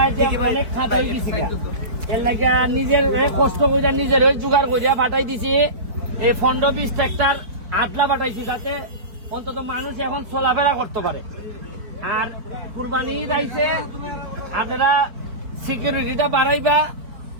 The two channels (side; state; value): left; late; 4.6 ms